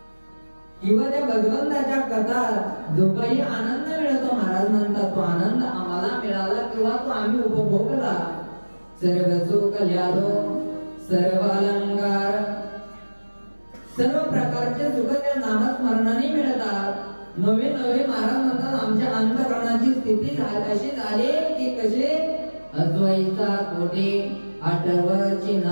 किंवा त्या भगवंताच्या कथा जो काही आनंद मिळतो महाराज म्हणतात तो आनंद आम्हाला मिळाला किंवा तो आम्ही उपभोगला. सर्व सुख ल्यालो सर्व अलंकार सर्व प्रकारचे सुख त्या नामस्मरणाने मिळतात. नवे नवे महाराज म्हणतात आमच्या अंतःकरणाची स्थिती अशी झाली की कसे अद्वैता कोटे आठवची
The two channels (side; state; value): both; inverted; correlation -1.00